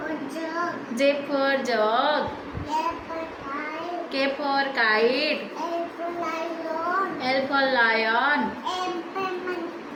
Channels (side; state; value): both; identical; correlation 1.00